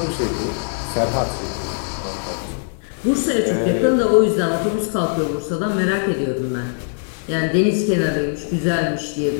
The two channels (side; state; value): right; silent; digital silence